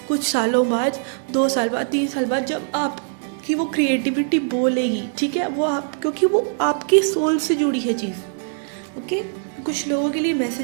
कुछ सालों बाद, 2 साल बाद, 3 साल बाद, जब आपकी वो क्रिएटिविटी बोलेगी, ठीक है। वो आप, क्योंकि वो आपकी सोल से जुड़ी है चीज़, ओके। कुछ लोगों के लिए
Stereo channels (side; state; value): left; silent; digital silence